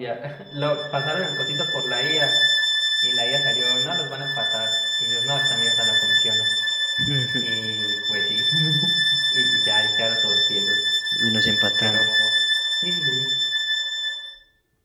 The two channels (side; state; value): both; identical; correlation 1.00